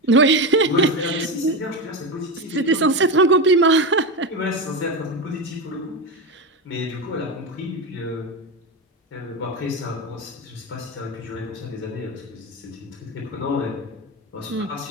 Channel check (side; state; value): both; normal; correlation 0.17